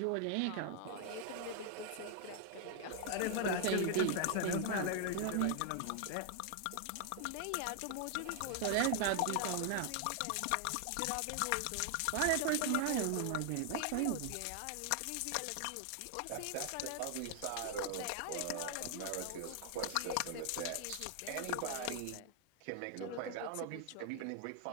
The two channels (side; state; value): both; different; correlation 0.00